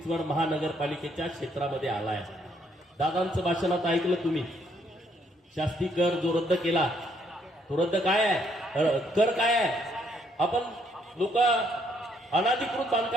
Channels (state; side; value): normal; both; correlation 0.70